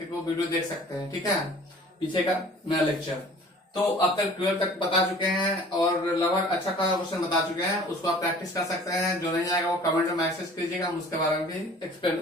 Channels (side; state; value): both; normal; correlation 0.48